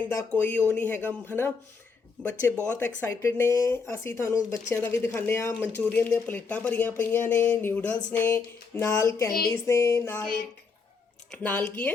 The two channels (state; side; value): quieter; right; 4.9 dB